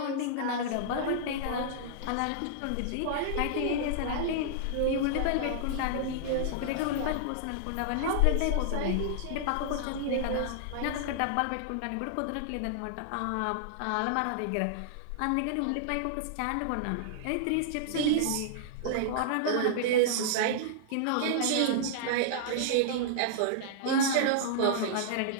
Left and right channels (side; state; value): both; different; correlation -0.01